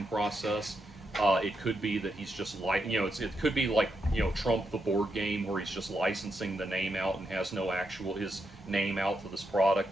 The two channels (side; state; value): both; normal; correlation 0.83